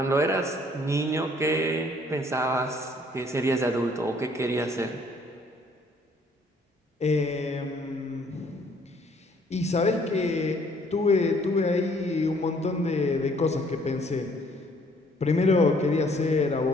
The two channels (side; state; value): both; normal; correlation 0.62